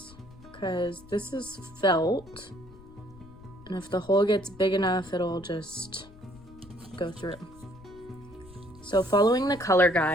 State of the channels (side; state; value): left; noise; rumble, 21 dB below the sound